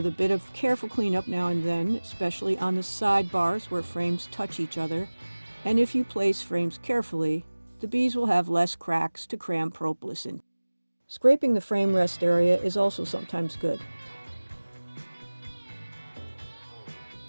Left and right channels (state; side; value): inverted; both; correlation -1.00